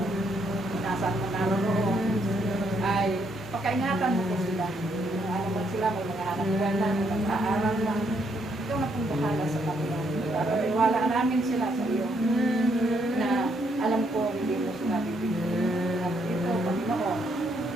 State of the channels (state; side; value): normal; both; correlation 0.73